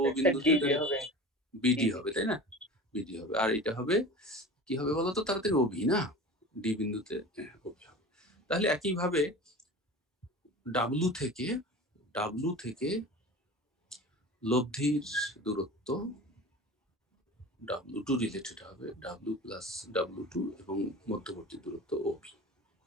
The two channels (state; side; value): normal; both; correlation 0.36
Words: বিন্দুতে, বিডি হবে, তাই না? বিডি হবে, আর এটা হবে কি হবে বলতো তাড়াতাড়ি, ওবি না, ডি বিন্দুতে ওবি হবে। তাহলে একইভাবে ডাব্লু থেকে লব্ধির দূরত্ব W2 রিলেটেড হবে W+W2 এবং মধ্যবর্তী দূরত্ব OB।